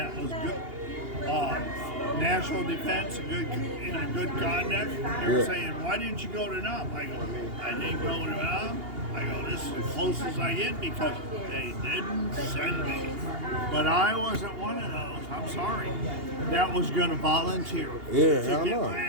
was good, national defense, and good conduct. They were Yeah. saying, "Why didn't you go to NUM?" I go, "I didn't go to NUM." I go, "This is as close as I get because they didn't send me." But I wasn't one of those. I'm sorry. That was going to volunteer Yeah, to hell get no. my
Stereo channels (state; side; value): late; left; 2.8 ms